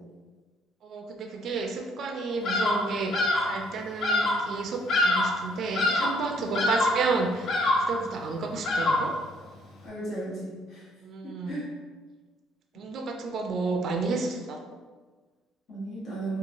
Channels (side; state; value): both; normal; correlation 0.65